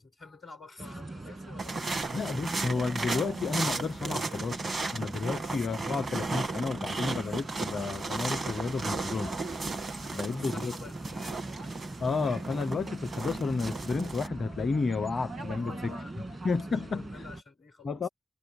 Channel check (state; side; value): normal; both; correlation 0.86